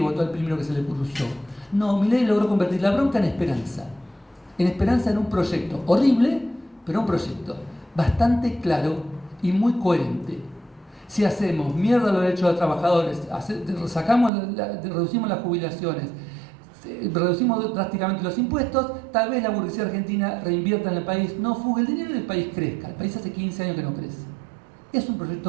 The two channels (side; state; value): left; drops out; at 14.3 s